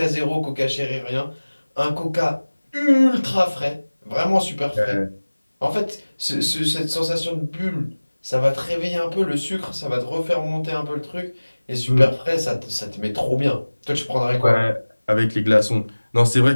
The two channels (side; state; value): both; inverted; correlation -1.00